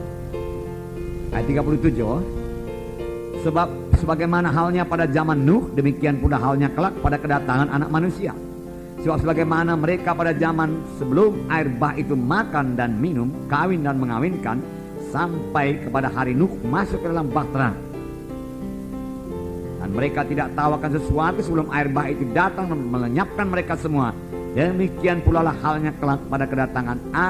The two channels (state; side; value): identical; both; correlation 1.00